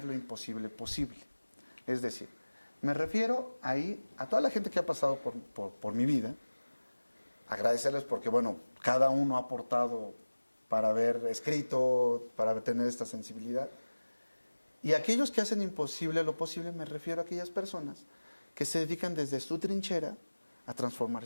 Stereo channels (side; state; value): both; inverted; correlation -1.00